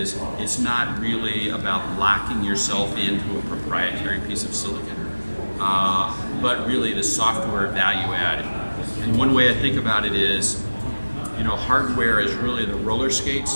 it's not really about locking yourself into a proprietary piece of silicon, but really the software value add. And one way I think about it is, hardware is really the roller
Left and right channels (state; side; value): inverted; both; correlation -1.00